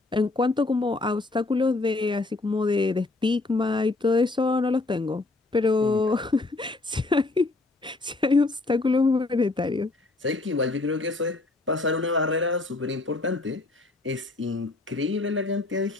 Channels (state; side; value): quieter; right; 3.2 dB